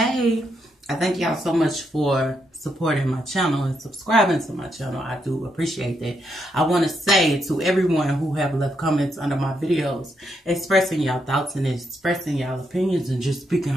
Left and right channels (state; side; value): normal; both; correlation 0.79